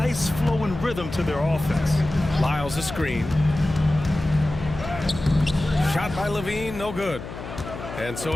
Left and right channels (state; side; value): noise; left; hum, 11 dB below the sound